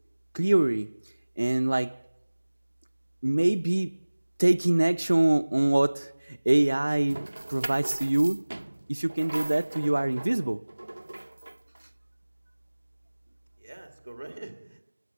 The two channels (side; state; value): both; inverted; correlation -1.00